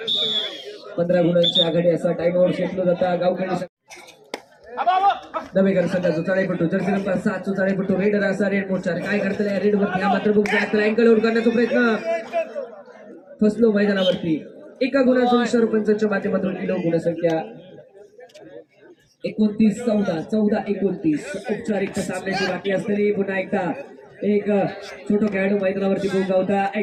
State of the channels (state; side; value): identical; both; correlation 1.00